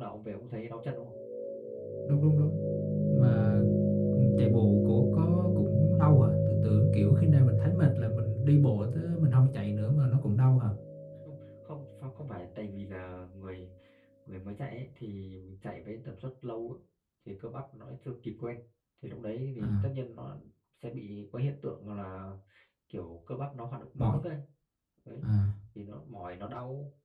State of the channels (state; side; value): identical; both; correlation 1.00